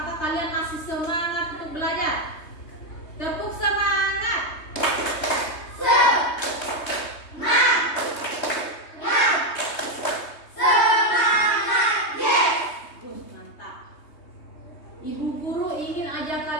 kalian masih semangat untuk belajar. Tepuk semangat. Ibu guru ingin ajak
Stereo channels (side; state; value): right; late; 3.2 ms